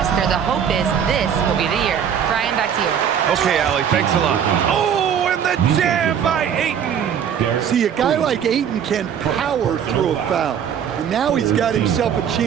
the hope is this will be the year. Brian, back to you. Okay, Allie, thanks a lot. Oh, and the jam by Ayton. See, a guy like Ayton can power through a foul. And now he's got himself a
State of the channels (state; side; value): quieter; left; 8.4 dB